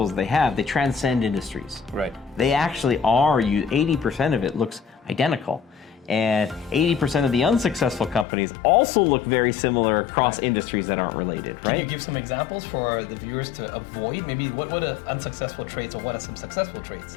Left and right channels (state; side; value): drops out; right; at 8.2 s